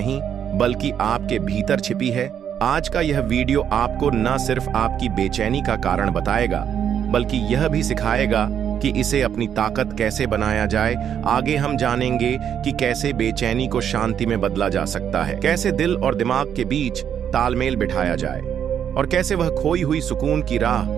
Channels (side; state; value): left; quieter; 8.8 dB